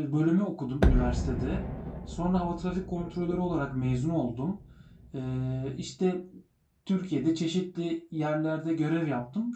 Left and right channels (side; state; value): both; identical; correlation 1.00